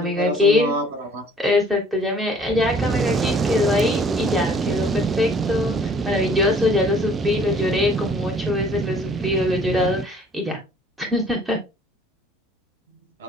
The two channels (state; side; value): normal; both; correlation 0.56